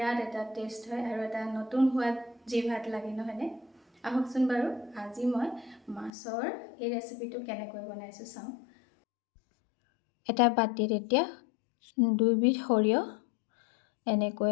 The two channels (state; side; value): drops out; right; at 6.1 s